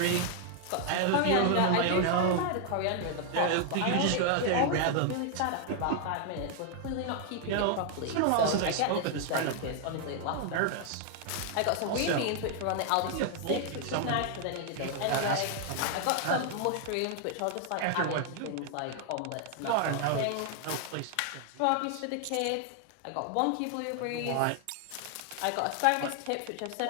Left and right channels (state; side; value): different; both; correlation 0.00